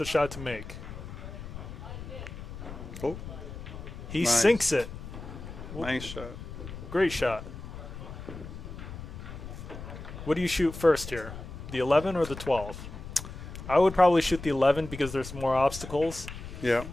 shot to make. Oh, He Nice. sinks it. nice shot. Great shot. What do you shoot first here? The 11 or the 12? I would probably shoot the 11 because there's more obstacles. Yeah.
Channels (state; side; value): noise; left; rumble, 11 dB below the sound